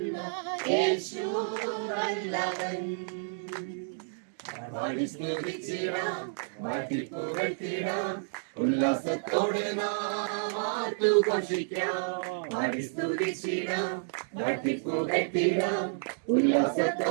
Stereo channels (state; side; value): silent; left; digital silence